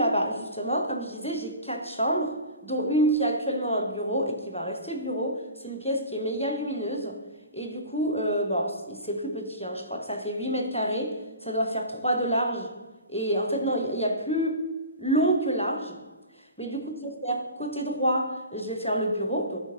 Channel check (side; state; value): both; inverted; correlation -0.37